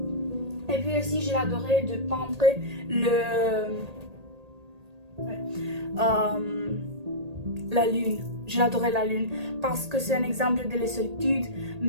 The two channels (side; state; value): left; late; 1.8 ms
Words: Et puis aussi, je l'adorais de peindre la lune. Je l'adorais la lune parce que c'est un exemple de la solitude,